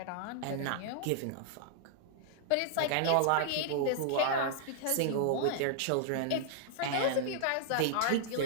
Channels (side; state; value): both; different; correlation -0.01